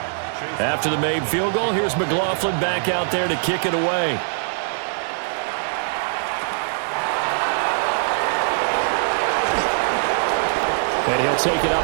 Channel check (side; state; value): left; silent; digital silence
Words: After the made field goal, here's McLaughlin back out there to kick it away. And he'll take it